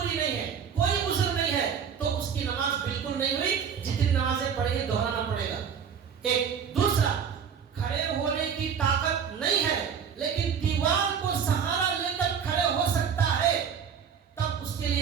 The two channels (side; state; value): left; quieter; 7.2 dB